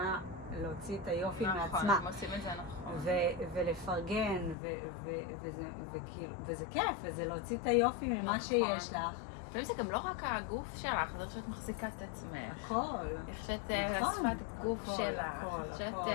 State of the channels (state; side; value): drops out; right; at 4.5 s